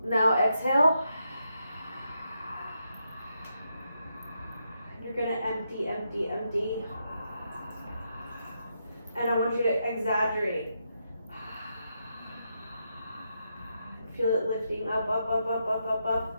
Now exhale. You're gonna empty, empty, empty. And I want you to exaggerate. Feel it lifting up, up, up, up, up, up,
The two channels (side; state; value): both; inverted; correlation -0.82